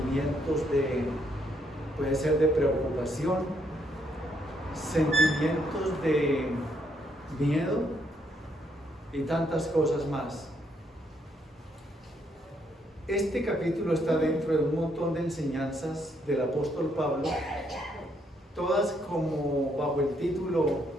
puede ser de preocupación, sentimientos de miedo y tantas cosas más. Este capítulo está dentro de un montón de enseñanzas del apóstol Pablo, todas como bajo el título:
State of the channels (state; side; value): normal; both; correlation 0.73